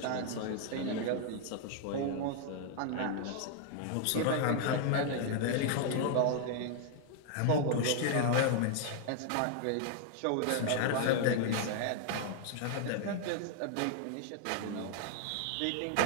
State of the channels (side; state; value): both; different; correlation 0.00